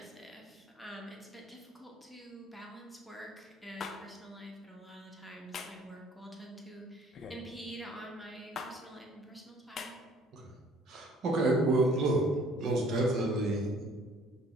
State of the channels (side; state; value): both; normal; correlation 0.57